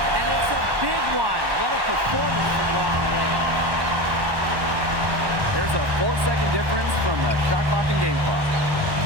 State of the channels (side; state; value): left; late; 1.1 ms